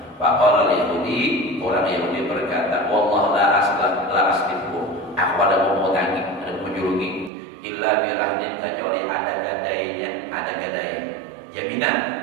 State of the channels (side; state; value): left; drops out; at 7.3 s